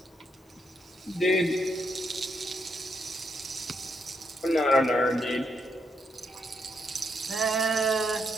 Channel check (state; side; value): normal; both; correlation 0.78